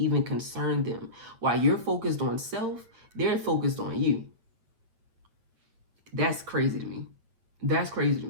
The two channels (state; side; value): late; left; 8.7 ms